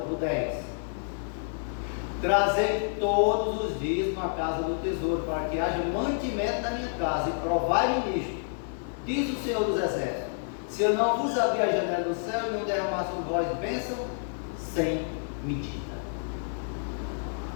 10. Trazei todos os dízimos à casa do tesouro, para que haja mantimento na minha casa, e provai-me nisto, diz o Senhor dos Exércitos: se eu não vos abrir a janela do céu e não derramar sobre vós bênção sem medida.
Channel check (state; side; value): silent; right; 59 dB below the other